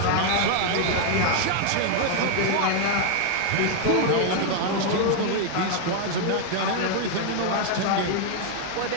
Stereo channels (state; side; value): different; both; correlation 0.00